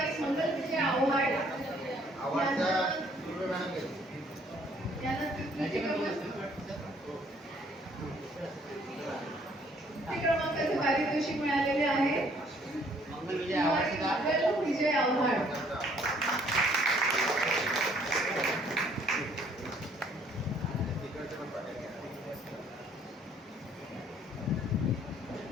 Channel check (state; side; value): normal; both; correlation 0.62